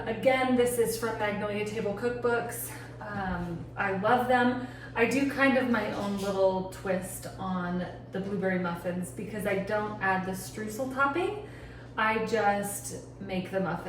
Again, this is from Magnolia Table Cookbooks. I love them. I do kind of my own little twist on the blueberry muffins because I don't add the streusel topping. I just make the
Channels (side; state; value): both; identical; correlation 1.00